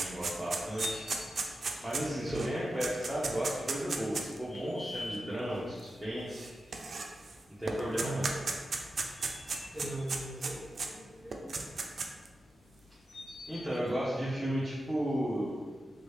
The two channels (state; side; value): normal; both; correlation 0.91